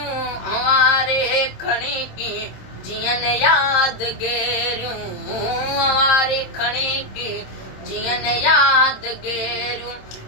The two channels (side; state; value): right; late; 27 ms